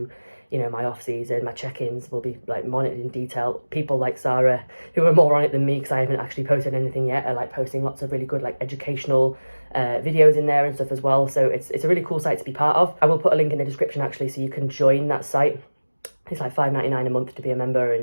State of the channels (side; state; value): both; inverted; correlation -1.00